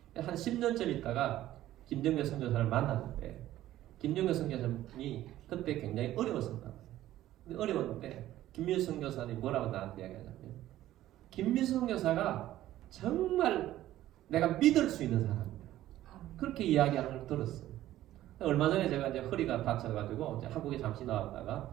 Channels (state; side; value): quieter; left; 14.0 dB